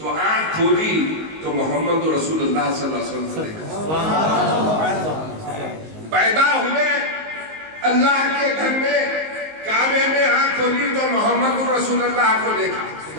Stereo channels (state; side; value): late; left; 19 ms